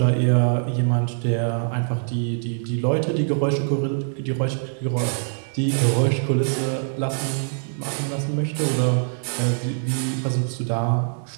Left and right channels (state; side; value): silent; left; 63 dB below the other